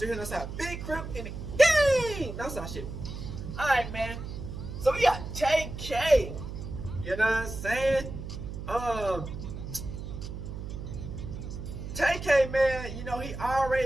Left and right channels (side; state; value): right; noise; hum, 8 dB below the sound